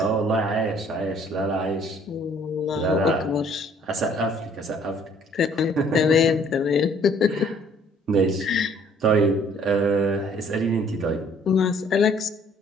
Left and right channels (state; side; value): normal; both; correlation 0.59